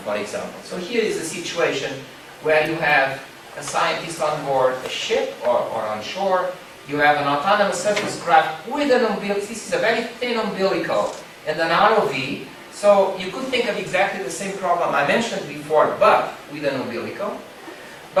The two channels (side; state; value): both; identical; correlation 1.00